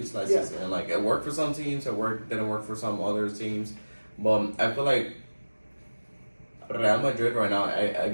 last season. And like, it worked for some teams, didn't work for some other teams. But I feel like Real Madrid right now,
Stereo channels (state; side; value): inverted; both; correlation -1.00